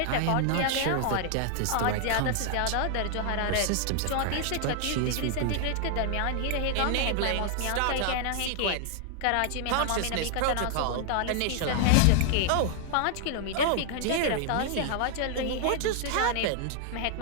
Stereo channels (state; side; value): different; both; correlation 0.00